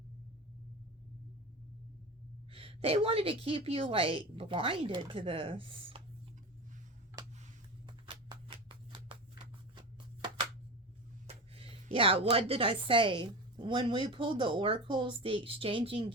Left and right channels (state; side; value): normal; both; correlation 0.26